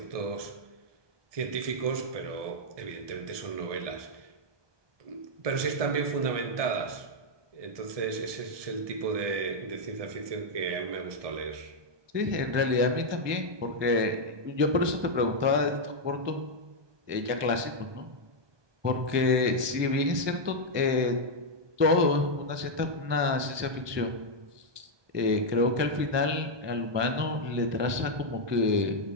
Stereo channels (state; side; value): late; left; 1.2 ms